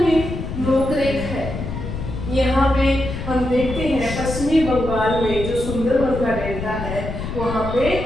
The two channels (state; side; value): noise; left; rumble, 6 dB below the sound